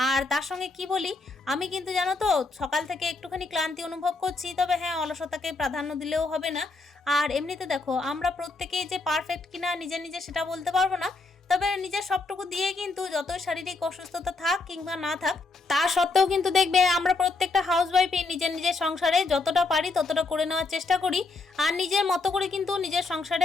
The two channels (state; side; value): quieter; right; 3.7 dB